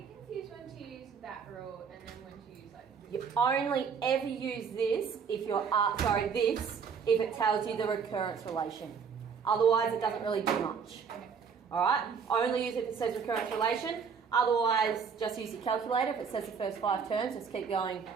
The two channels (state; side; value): quieter; left; 6.2 dB